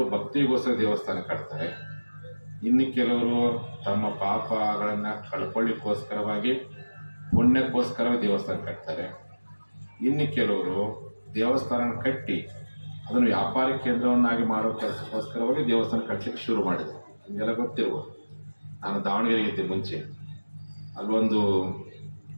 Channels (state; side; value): inverted; both; correlation -1.00